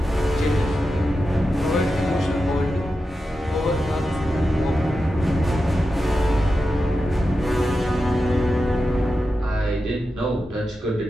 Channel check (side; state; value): both; normal; correlation 0.90